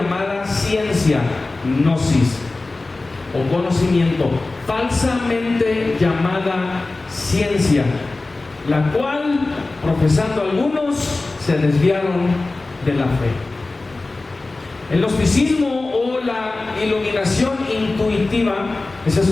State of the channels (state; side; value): quieter; right; 3.3 dB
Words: ciencia, gnosis o conocimiento, falsamente llamada ciencia, la cual, profesando algunos, se desviaron de la fe. El gnosticismo o la iluminación intuitiva, ese es